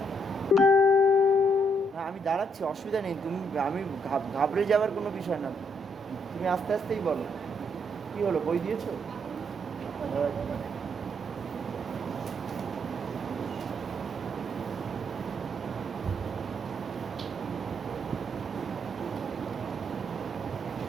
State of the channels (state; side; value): normal; both; correlation 0.73